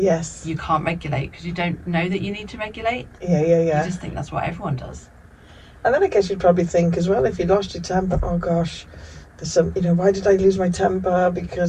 you can't regulate because you don't know that you need to regulate. Yeah. You just think that's what everyone does. And then I guess you'd probably think as well, if you lost your temper, oh gosh, there's some, why did I lose my temper? Because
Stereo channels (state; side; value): identical; both; correlation 1.00